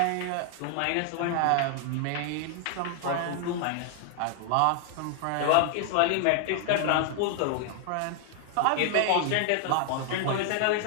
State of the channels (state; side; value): different; both; correlation 0.00